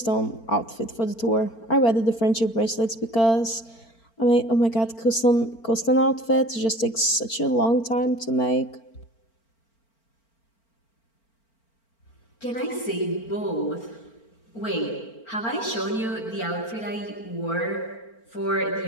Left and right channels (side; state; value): right; late; 4.4 ms